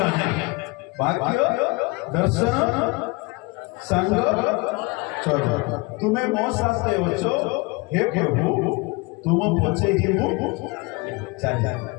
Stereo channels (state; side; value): quieter; right; 25.5 dB